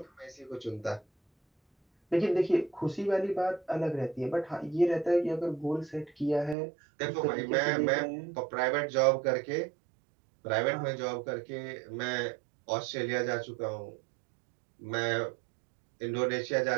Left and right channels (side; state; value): left; drops out; at 6.6 s